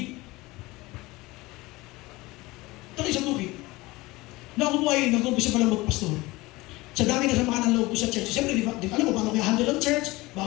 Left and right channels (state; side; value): quieter; right; 21.1 dB